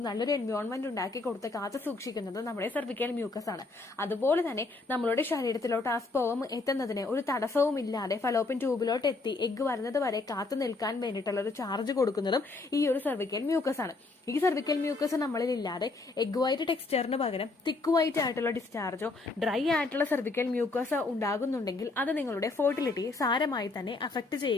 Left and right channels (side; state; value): right; quieter; 3.6 dB